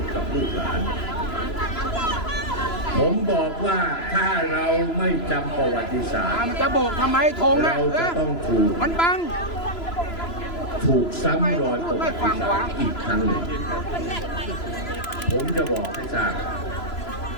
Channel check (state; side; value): late; right; 3.0 ms